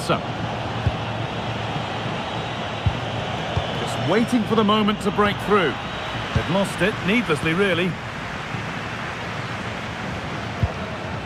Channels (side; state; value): both; identical; correlation 1.00